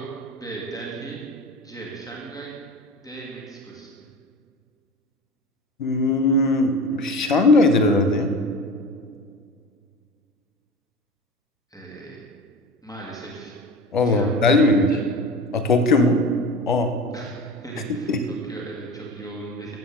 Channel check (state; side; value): normal; both; correlation 0.34